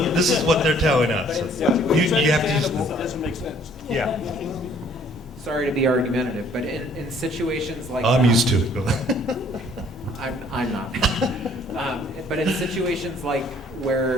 they're telling us. You have to. It doesn't make sense. Yeah. Sorry to be argumentative, but in situations like I'm that, used to it. Go ahead. I'm not. But in situations like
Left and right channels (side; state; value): both; normal; correlation 0.59